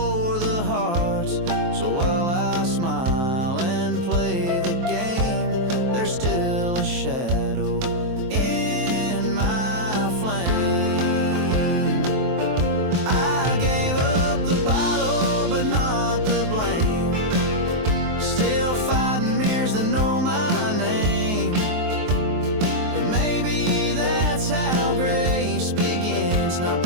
the hearts. So while I smile and play the game, there's still a shadow in my flame. I gave up the bottle, but not the blame. Still fighting mirrors that know my name. But maybe that's how grace begins, not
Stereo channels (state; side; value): late; left; 23 ms